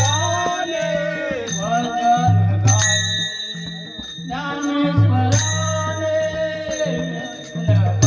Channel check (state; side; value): identical; both; correlation 1.00